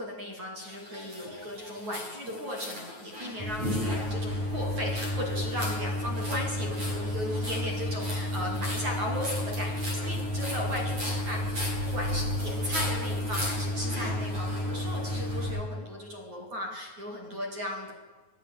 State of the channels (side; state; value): left; late; 9.3 ms